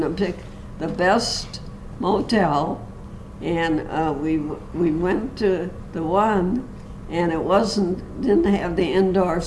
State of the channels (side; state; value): both; identical; correlation 1.00